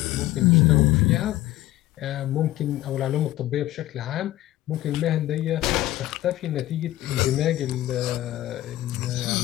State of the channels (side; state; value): right; quieter; 15.5 dB